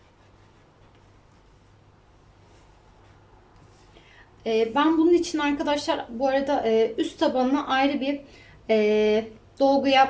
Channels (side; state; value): both; identical; correlation 1.00